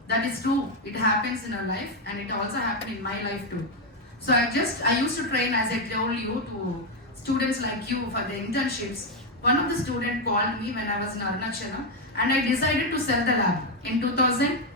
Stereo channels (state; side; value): normal; both; correlation 0.05